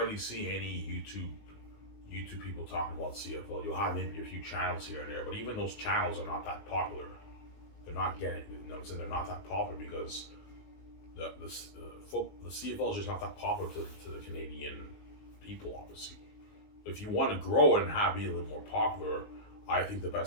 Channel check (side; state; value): right; late; 19 ms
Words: see any YouTube people talking about CFL. You'll have maybe a few channels here and there, but even those channels are not that popular. They're not getting, you know what I'm saying? They're not that popular because the CFL is just not that popular to the Canadian people, obviously. If you want to grow it and be a little more popular, I think the